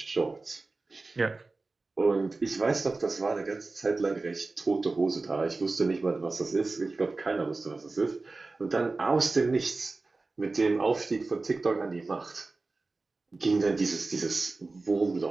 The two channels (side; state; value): left; quieter; 3.6 dB